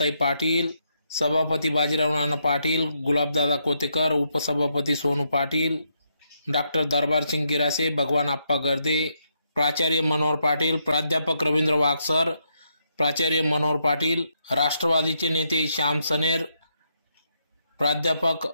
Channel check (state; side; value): inverted; both; correlation -0.79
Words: Patil, सभापती बाजीराव नाना पाटील, गुलाबदादा कोतेकर, उपसभापती सोनू पाटील, डॉक्टर दरबारसिंग गिरासे, भगवान आप्पा गर्दे, प्राचार्य मनोहर पाटील, प्राध्यापक रवींद्र वागसर, प्राचार्य मनोहर पाटील, राष्ट्रवादीचे नेते श्याम सनेर, प्राध्यापक